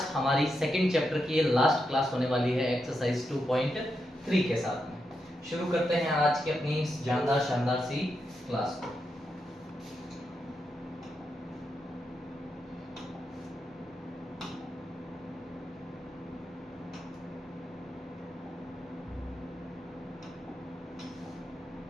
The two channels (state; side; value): normal; both; correlation 0.85